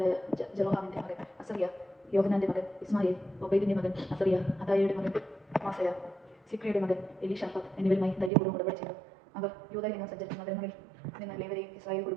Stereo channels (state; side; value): drops out; left; at 8.3 s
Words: ജെറോഹാമിന്റെ മകൻ അസറിയ, യോഹനാന്റെ മകൻ ഇസ്മായേൽ, ഒബൈദിന്റെ മകൻ അസറിയ, അദായയുടെ മകൻ മാസയ, സിക്രിയുടെ മകൻ എലീഷാഫാത്ത് എന്നിവരുമായി ധൈര്യപൂർവ്വം ഉടമ്പടി ചെയ്തു. അവർ യൂദയിൽ നിന്ന് സഞ്ചരിച്ച നഗരങ്ങളിൽ നിന്ന് ലേവ്യരെയും ഇസ്രായേൽ